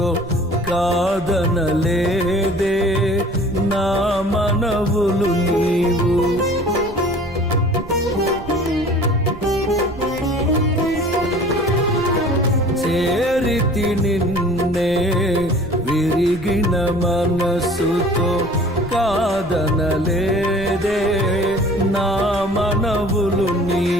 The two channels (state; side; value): noise; right; rumble, 15 dB below the sound